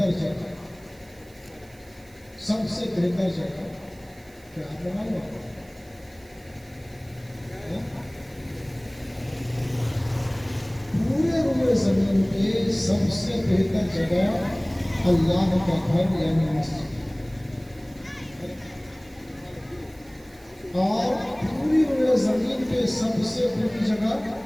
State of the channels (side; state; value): right; noise; hiss, 27 dB below the sound